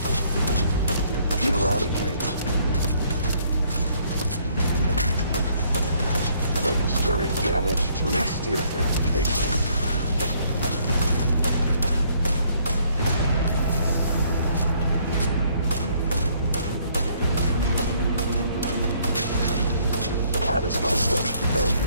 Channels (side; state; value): both; inverted; correlation -0.65